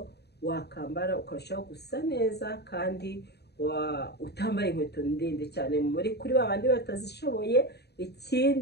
wakambara ukarushaho gusa neza, kandi utambaye inkweto ndende cyane muri kuri babandi batazishoboye.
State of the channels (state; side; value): late; right; 0.48 ms